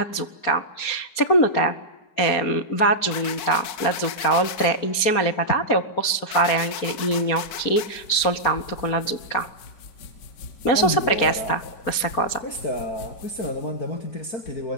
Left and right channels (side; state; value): right; late; 4.3 ms